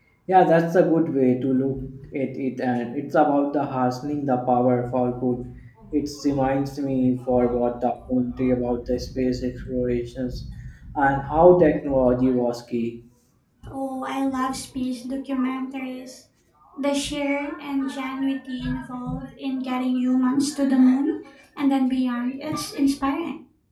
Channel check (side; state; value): both; identical; correlation 1.00